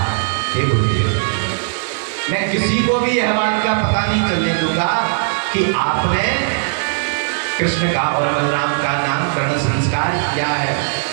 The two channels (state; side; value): silent; left; digital silence